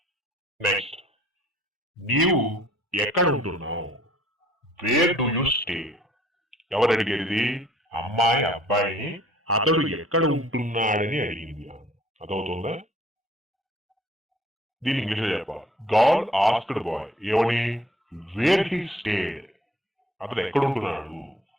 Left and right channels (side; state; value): both; normal; correlation 0.55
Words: నెక్స్ట్, నీవు ఎక్కడ ఉంటున్నావు? Where do you stay? ఎవరు అడిగేది? అమ్మాయి అబ్బాయిని అతడు ఎక్కడ ఉంటున్నాడని అడిగింది. అదవుతుందా? దీని ఇంగ్లీష్ చెప్పాలి. గర్ల్ ఆస్క్డ్ బాయ్ ఏమని? Where he stayed? అతడు ఎక్కడ ఉంటున్నాడు?